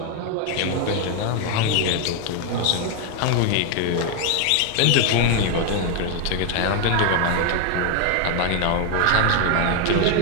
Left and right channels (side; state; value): both; different; correlation 0.01